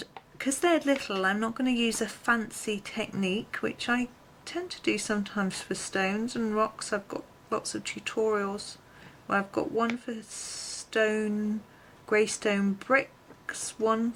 because they're little, I'm not going to use a fancy technique, which I tend to do sometimes for stones and rocks. I've got lots of tutorials where I've got one for stone, grey stone bricks, one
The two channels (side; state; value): both; identical; correlation 1.00